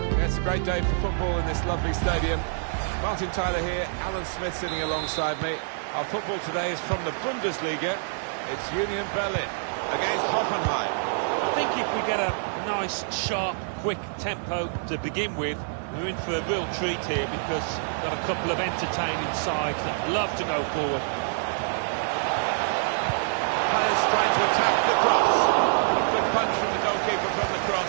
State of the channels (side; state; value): left; silent; digital silence